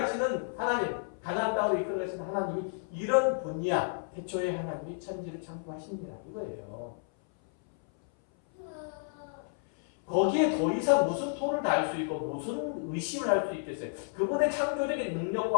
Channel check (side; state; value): right; silent; 57 dB below the other